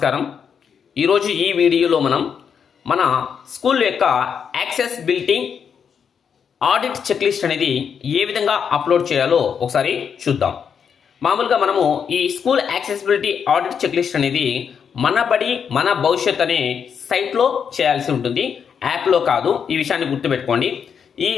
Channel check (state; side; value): quieter; right; 7.1 dB